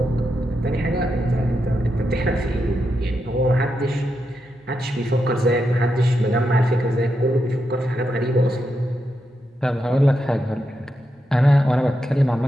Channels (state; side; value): normal; both; correlation 0.85